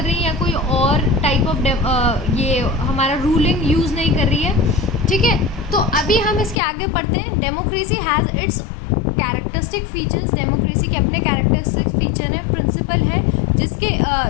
रही या कोई और टाइप ऑफ ये हमारा रूलिंग यूज़ नहीं कर रही है. ठीक है, तो अभी हम इसके आगे पढ़ते हैं. Democracy has its characteristic features. Democracy के अपने कैरेक्टरिस्टिक फीचर हैं, प्रिंसिपल है जिसके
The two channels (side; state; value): right; drops out; at 6.6 s